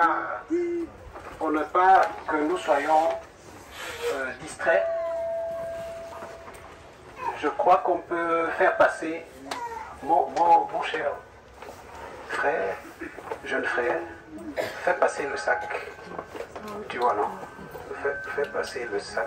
pas que nous soyons distraits, je crois qu'on peut faire passer mon cher frère, jeune frère, fais passer le sac. Tu vois, non? Fais passer le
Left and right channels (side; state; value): both; identical; correlation 1.00